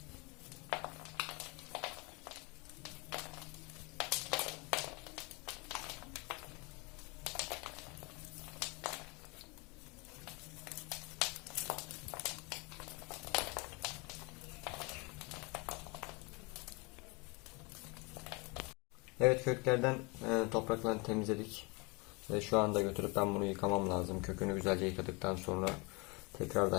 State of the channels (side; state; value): right; quieter; 28.7 dB